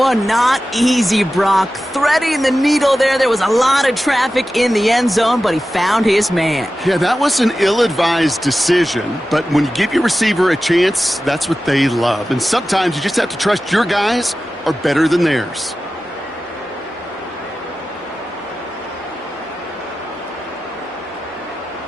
not easy, Brock. Threading the needle there. There was a lot of traffic in the end zone, but he found his man. Yeah, that was an ill-advised decision, but when you give your receiver a chance, that's what they love. And sometimes you just have to trust your guys are better than theirs.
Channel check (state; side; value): normal; both; correlation 0.94